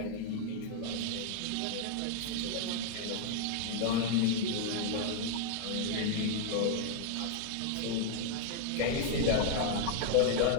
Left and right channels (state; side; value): different; both; correlation 0.00